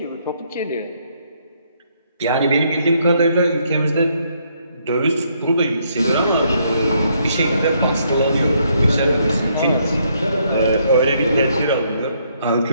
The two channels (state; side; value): inverted; both; correlation -0.72